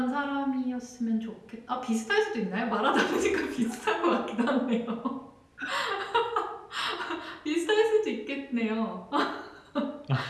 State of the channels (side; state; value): both; identical; correlation 1.00